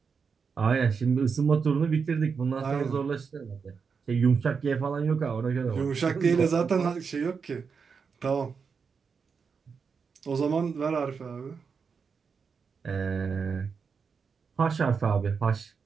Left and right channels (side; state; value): left; quieter; 5.7 dB